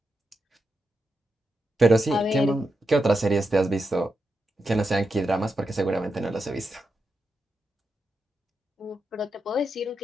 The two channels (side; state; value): both; normal; correlation 0.87